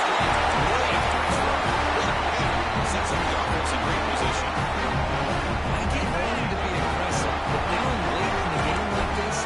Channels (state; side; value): identical; both; correlation 1.00